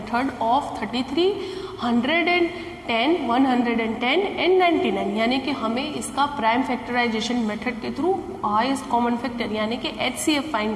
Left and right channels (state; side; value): identical; both; correlation 1.00